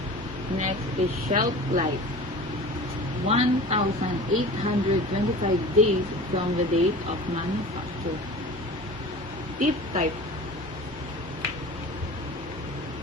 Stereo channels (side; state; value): both; normal; correlation 0.38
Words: Next is shelf life, 1,825 days from the date of manufacture. Tip type,